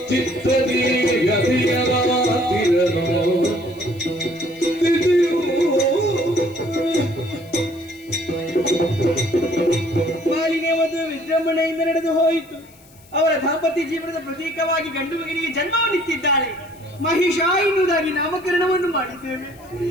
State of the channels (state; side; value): noise; left; hiss, 27 dB below the sound